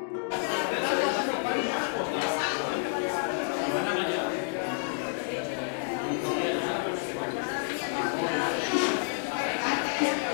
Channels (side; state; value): right; silent; 58 dB below the other